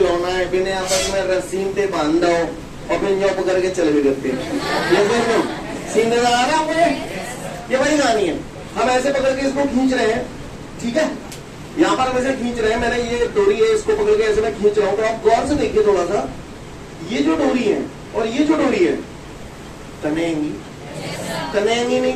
है, बिना आपस में रस्सीन पे बांध दो और फिर जो पकड़ के चले भी करते। ये सीन नजर आ रहा मुझे? ये वही कहानी है। हम ऐसे पकड़ के इसको खींच रहे हैं, ठीक है? यहाँ पर हम ऐसे खींच रहे हैं, मैंने ये डोरी है, इसको पकड़ के ऐसे मैं खींच रहा हूँ। तो आप गौर से देखिए थोड़ा सा, ये जो डोरी है और ये जो डोरी है तनेंगी, तनेंगी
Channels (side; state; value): both; identical; correlation 1.00